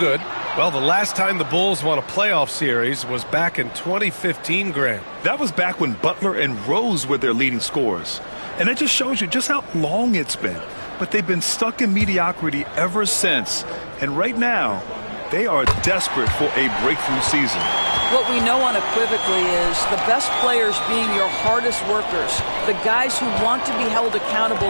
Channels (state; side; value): inverted; both; correlation -1.00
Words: Well, the last time the Bulls won a playoff series was back in 2015, Grant. That was back when Butler and Rose were their leading scorers. And it just shows you just how long it's been. But they've been stuck in mediocrity ever since. And right now, they are desperate for a breakthrough season. What we know unequivocally is the best players being your hardest workers, the guys who want to be held